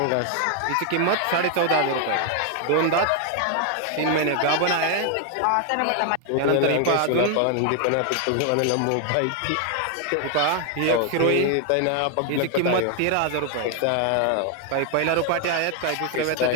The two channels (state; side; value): different; both; correlation 0.01